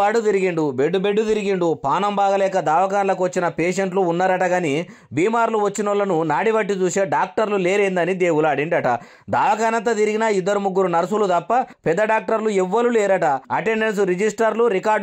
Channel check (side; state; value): both; identical; correlation 1.00